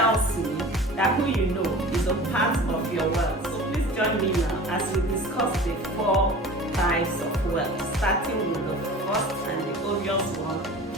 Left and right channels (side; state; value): both; normal; correlation 0.39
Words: me that who you know is a part of your wealth. So please join me now as we discuss the 4 types of wealth, starting with the first and the obvious one,